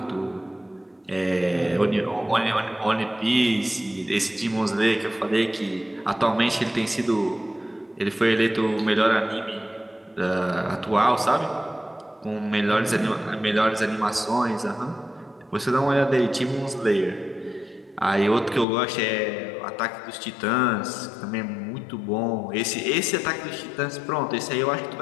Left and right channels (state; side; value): drops out; right; at 18.7 s